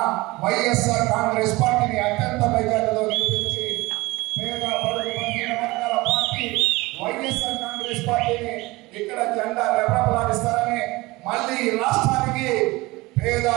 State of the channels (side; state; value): left; quieter; 21.6 dB